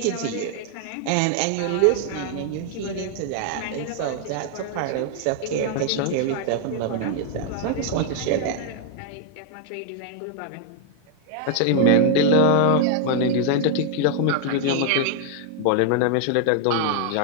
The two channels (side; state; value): both; different; correlation 0.00